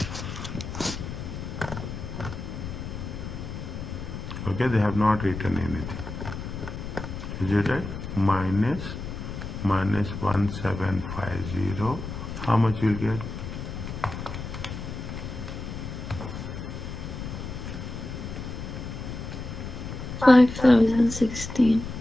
Okay, they have not written anything. Is it right? Minus 1750. How much you will get? 5016.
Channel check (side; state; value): left; noise; rumble, 7 dB below the sound